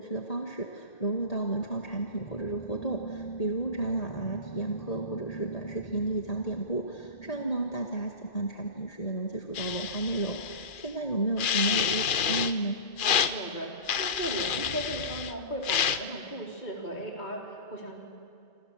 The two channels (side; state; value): right; late; 2.4 ms